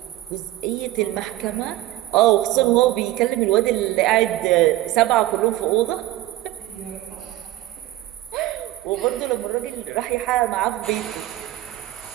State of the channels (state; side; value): quieter; left; 15.3 dB